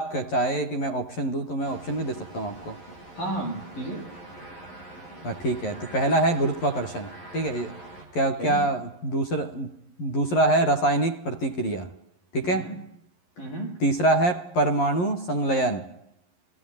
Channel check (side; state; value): right; late; 11 ms